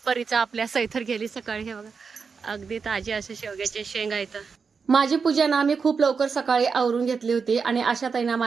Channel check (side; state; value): left; quieter; 5.4 dB